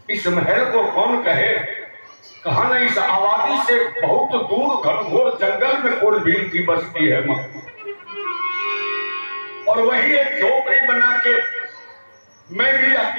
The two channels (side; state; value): both; inverted; correlation -1.00